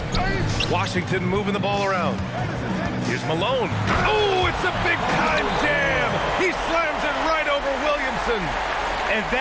Washington moving the ball around. Here's Malone. Oh, it's a big-time jam. He slams it right over Williamson. And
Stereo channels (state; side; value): identical; both; correlation 1.00